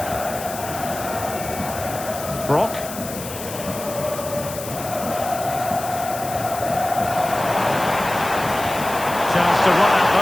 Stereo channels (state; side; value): noise; left; hiss, 10 dB below the sound